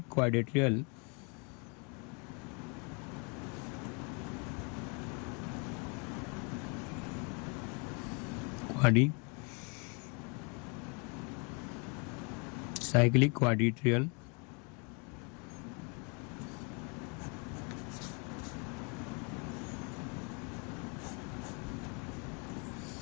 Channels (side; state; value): right; quieter; 33.9 dB